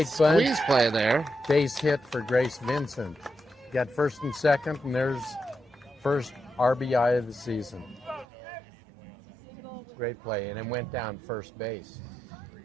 bunt. Squeeze play there. Base hit for Grace Vincent. Got first and second, and there's first RBI of the season. Great play, and it went down first base.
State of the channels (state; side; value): drops out; left; at 8.2 s